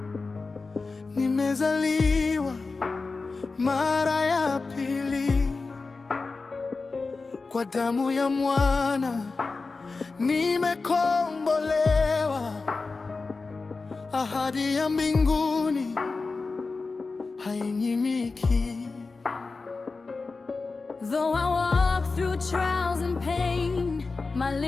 nimezaliwa mara ya pili. Kwa damu ya mwana nimekombolewa, ahadi ya mbinguni hainyimiki. Though I walk through trials and pain, my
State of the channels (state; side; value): quieter; right; 4.0 dB